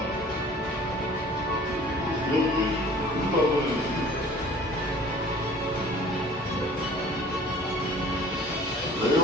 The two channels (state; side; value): normal; both; correlation 0.49